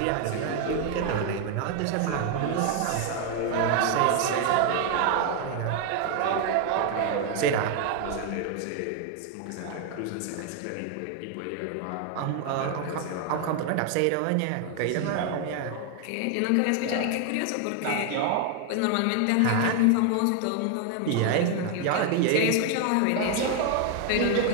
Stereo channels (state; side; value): different; both; correlation 0.01